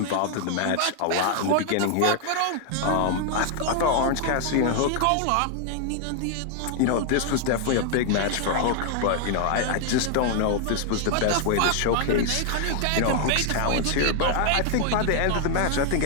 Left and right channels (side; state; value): both; different; correlation 0.00